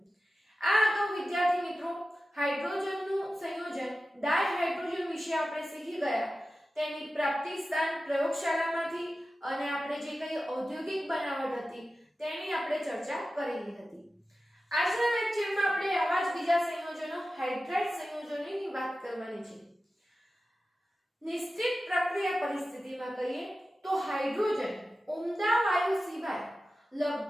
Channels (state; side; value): normal; both; correlation 0.94